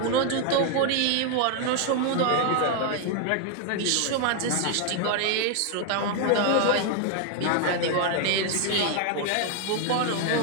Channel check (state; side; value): different; both; correlation 0.00